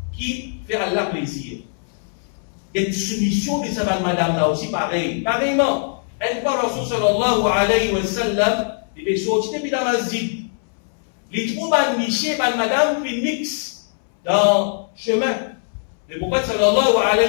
qui fait Allah plaisir. Et soumission de sa madame là aussi pareil, pareillement. Une fois Rasul sallallahu alayhi wa sallam il est sorti depuis la masjid. Les troupes de Miché et madame fait mix dans le chemin. Le prophète sallallahu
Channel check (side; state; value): right; silent; 65 dB below the other